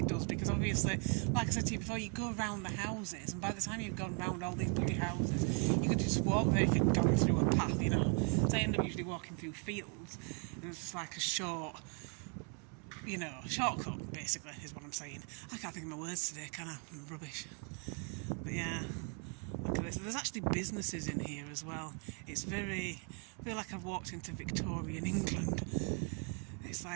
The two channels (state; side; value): quieter; left; 38.7 dB